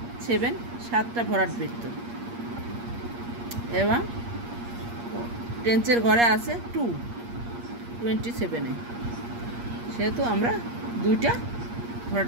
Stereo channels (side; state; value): left; late; 8.5 ms